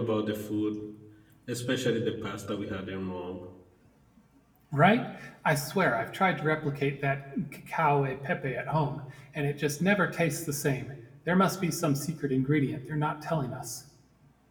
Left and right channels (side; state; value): both; identical; correlation 1.00